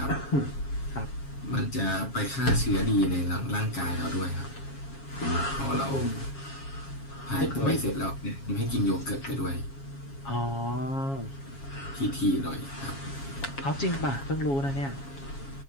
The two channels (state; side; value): late; right; 7.3 ms